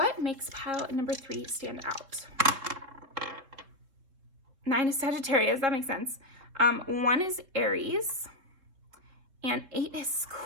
makes pile number 3 stand out? 9 is Sagittarius, that makes sense. 1 is Aries, and 8 is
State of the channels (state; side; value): late; left; 3.9 ms